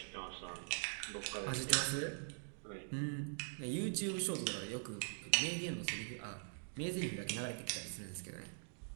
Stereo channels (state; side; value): silent; left; digital silence